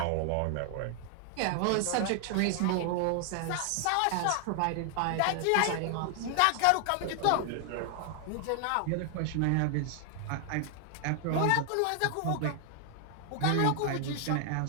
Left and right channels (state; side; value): different; both; correlation 0.00